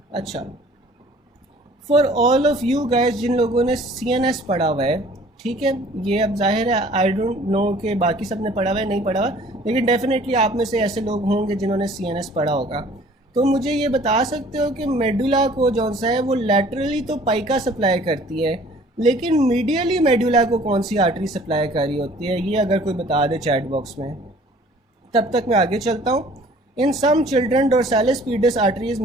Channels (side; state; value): both; normal; correlation 0.53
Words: अच्छा, for all of you guys जिन लोगों ने CNS पढ़ा हुआ है, ठीक है, ये अब जाहिर है आई डोंट नो कि बाकी सब ने पढ़ा हुआ है नहीं पढ़ा हुआ, लेकिन डेफिनेटली आप में से ऐसे लोग होंगे जिन्होंने CNS पढ़ा होगा। तो मुझे ये बता सकते हो कि मेडुला को जौन सा है वो लैटरली तो पाइका सप्लाई करती है, लेकिन मीडियली मेडुला को कौन सी आर्टरी सप्लाई कर रही होती है, ये अगर कोई बता दे चैट बॉक्स में। तब तक मैं आगे चलता हूँ। In some children dorsalis pedis artery is